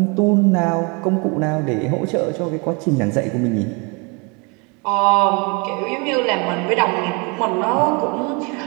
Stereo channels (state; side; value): quieter; left; 31.0 dB